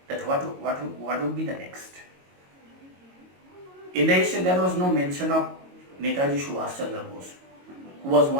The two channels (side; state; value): left; late; 22 ms